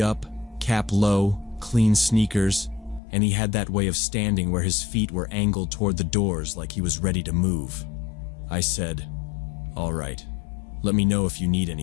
up, cap low, clean sneakers, and he had that way of standing where his feet were angled toward the doors like he was ready to move. I said, "All right, let me know if you need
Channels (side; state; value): right; drops out; at 3.0 s